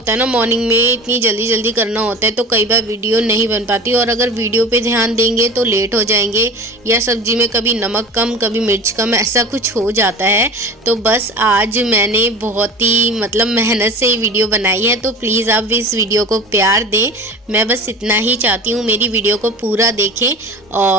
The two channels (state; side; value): normal; both; correlation 0.36